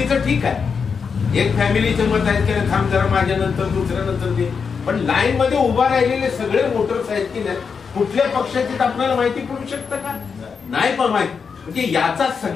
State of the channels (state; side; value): quieter; right; 5.8 dB